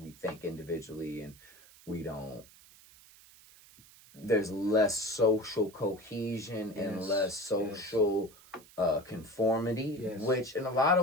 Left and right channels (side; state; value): right; noise; hiss, 23 dB below the sound